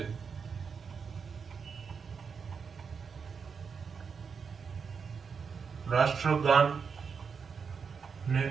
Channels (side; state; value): left; quieter; 5.9 dB